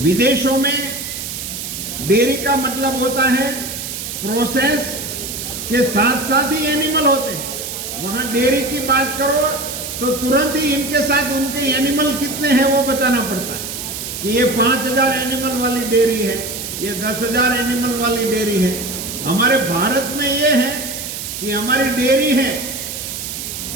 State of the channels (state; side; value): noise; right; hiss, 7 dB below the sound